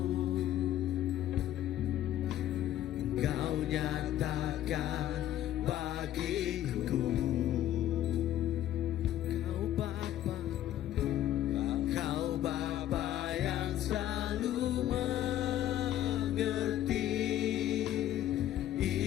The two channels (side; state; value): right; quieter; 12.6 dB